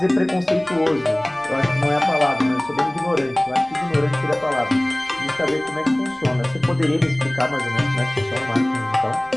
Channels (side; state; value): left; noise; rumble, 28 dB below the sound